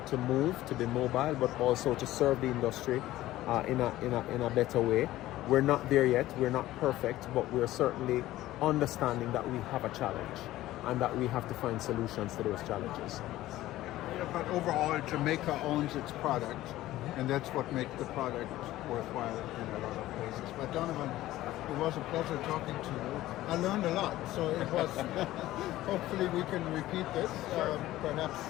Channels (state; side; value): quieter; right; 15.5 dB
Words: move, to be mobile, but also to serve the industry in a better way. We're not there yet, we're not perfect, but we're certainly understanding that we have a challenge and that we have to find solutions to those challenges. Yeah, but overall, Jamaica owns its product, and that's what makes the product worthwhile in a lot of places. But Donovan, it was a pleasure talking to you. I learned a lot, so it was. Hopefully, we can repeat this, perhaps